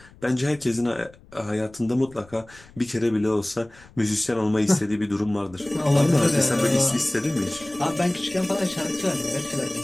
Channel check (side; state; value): left; noise; rumble, 24 dB below the sound